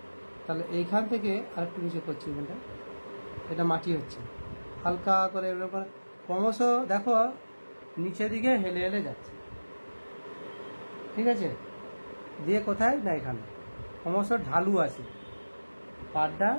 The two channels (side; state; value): both; inverted; correlation -1.00